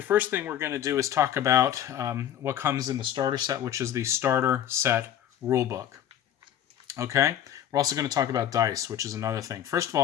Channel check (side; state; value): right; quieter; 10.5 dB